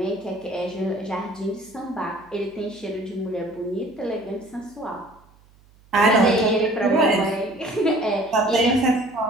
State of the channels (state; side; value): noise; right; hum, 29 dB below the sound